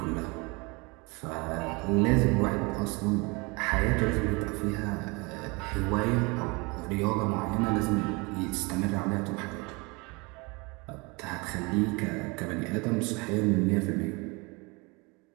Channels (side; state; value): left; quieter; 27.4 dB